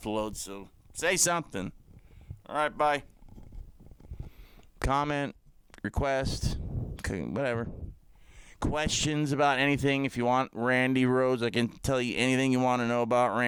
so say something. Alright, bye. Comment, request, whatever. Questions about anything. If you want Randy Rhodes, I can tell you anything you want to know about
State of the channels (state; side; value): identical; both; correlation 1.00